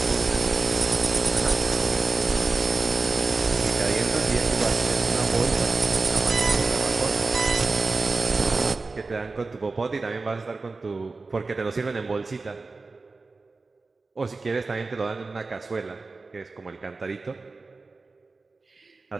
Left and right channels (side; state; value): left; quieter; 3.8 dB